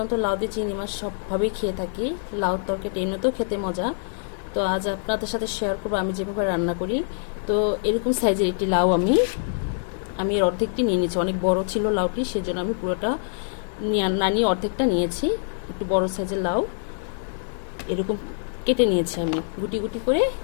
লাউ দিয়ে চিংড়ি মাছ সবভাবেই খেয়ে থাকি। লাউ তরকারিটা এমনিতেও খেতে মজা। তো আজ আপনাদের সাথে শেয়ার করবো আমি যেভাবে রান্না করি। তো এরকম সাইজের একটি লাউ আমি এর অর্ধেকটি নিয়ে নিয়েছি। অনেক বড় ছিল লাউটি, সেজন্য আমি পুরোটা না নিয়ে অর্ধেকটা নিয়েছি। একটু বড় সাইজের লাউ এরকম কেটে নিয়েছি, আমি গুটি গুটি করে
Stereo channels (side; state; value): right; silent; digital silence